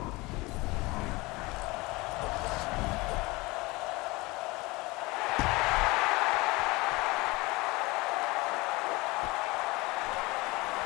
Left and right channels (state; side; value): quieter; right; 23.1 dB